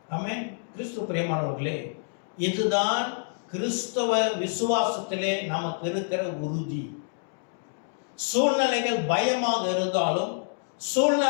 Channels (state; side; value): silent; right; digital silence